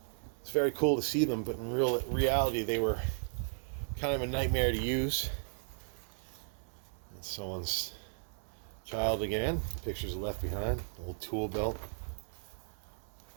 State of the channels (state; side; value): silent; left; 54 dB below the other